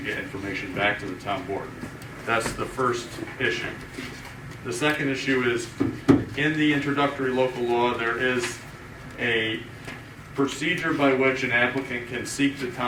get information back to the town board. That's the first issue. The second issue is, in the introductory local law, there is a procedure by which an applicant can seek the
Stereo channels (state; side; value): identical; both; correlation 1.00